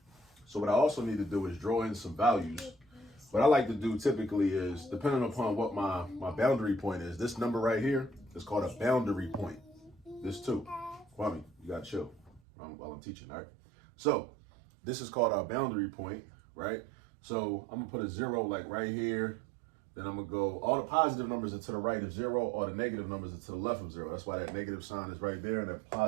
So what I also need to do is draw in some values. What I like to do typically is, depending upon what my boundary point is, this number right here is called a boundary point. This too. Kwame, you got to chill while I'm teaching, all right? So this is called our boundary point, right? So I'm going to put a 0 like right here. Then I'm going to go, all the positive numbers are to the right of 0, all the negative numbers are to the left of 0. That's why that negative sign is right there and that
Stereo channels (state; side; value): drops out; left; at 12.4 s